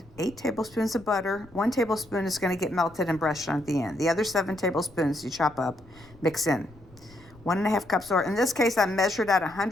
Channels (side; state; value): left; noise; rumble, 24 dB below the sound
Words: 8 tablespoons of butter. 1 tablespoon is going to get melted and brushed on at the end. The other 7 tablespoons you chop up, mix in. 1.5 cups, or in this case I measured out